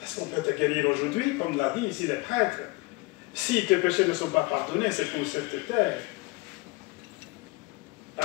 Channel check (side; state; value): right; quieter; 24.5 dB